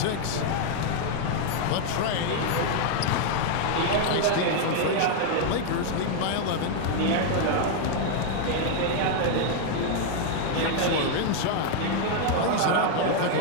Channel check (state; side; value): different; both; correlation 0.00